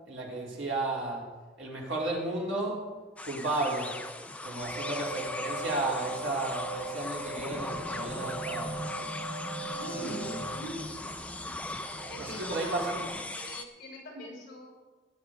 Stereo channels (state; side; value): normal; both; correlation 0.31